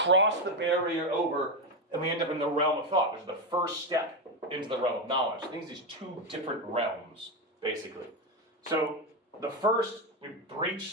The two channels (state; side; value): normal; both; correlation 0.11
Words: the barrier over and we end up in the realm of thought, which is the first step into the realm of knowledge. I think these two different realms, basically. So the first, we